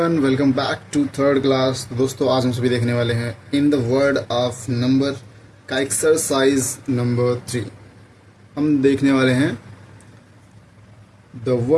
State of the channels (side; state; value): both; identical; correlation 1.00